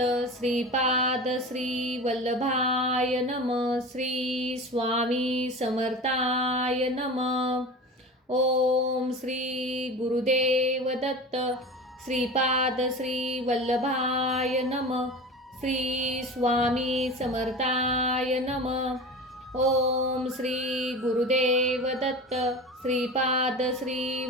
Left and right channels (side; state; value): both; normal; correlation 0.33